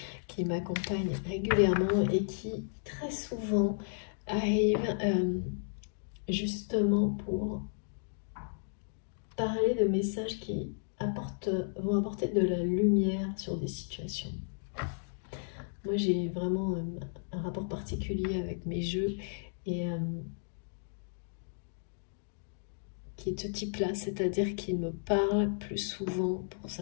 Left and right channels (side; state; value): right; silent; digital silence